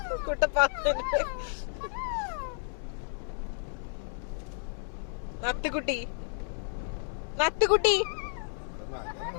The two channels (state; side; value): silent; right; 57 dB below the other